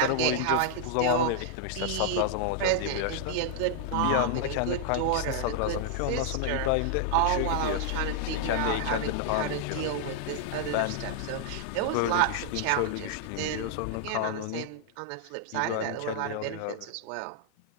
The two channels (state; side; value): different; both; correlation -0.01